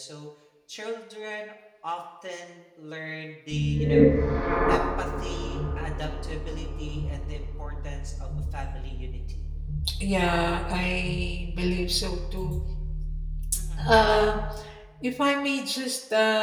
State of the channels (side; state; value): both; identical; correlation 1.00